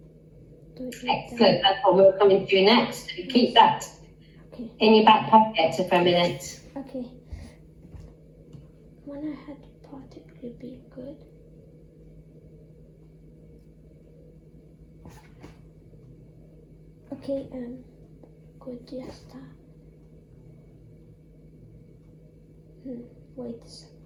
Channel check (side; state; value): both; identical; correlation 1.00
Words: Excellent. That's what we're coming to next. Keep that in your back pocket for a minute. Okay. When I had particularly be good. Okay, good, yes, that. Wait a second.